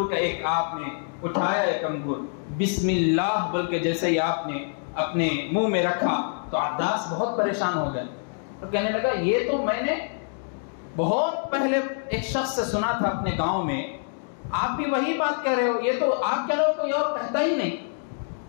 کا ایک آپ نے اٹھایا، ایک انگور بسم اللہ بول کے جیسے ہی آپ نے اپنے منہ میں رکھا تو عداس بہت پریشان ہو گئے، تو کہنے لگا یہ تو میں نے بہت پہلے ایک شخص سے سنا تھا اپنے گاؤں میں، آپ بھی وہی بات کہہ رہے ہو، یہ تو آپ کے لوگ کوئی اور کہتا ہی نہیں۔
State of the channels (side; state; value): right; silent; digital silence